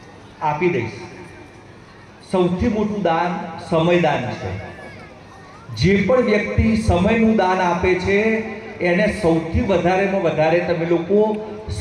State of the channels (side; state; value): both; identical; correlation 1.00